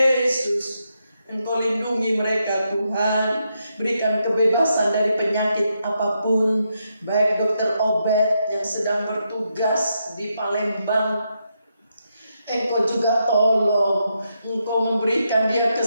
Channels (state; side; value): inverted; both; correlation -0.82